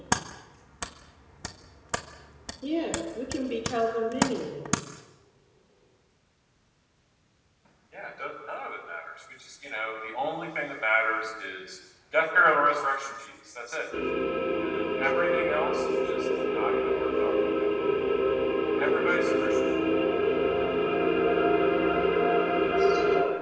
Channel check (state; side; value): identical; both; correlation 1.00